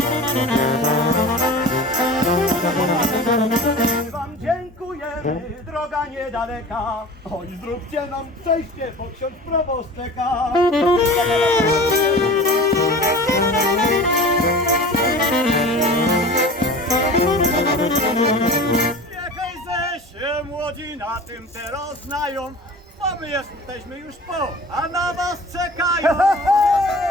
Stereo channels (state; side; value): normal; both; correlation 0.38